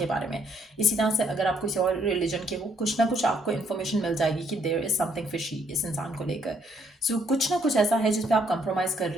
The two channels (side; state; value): both; normal; correlation 0.69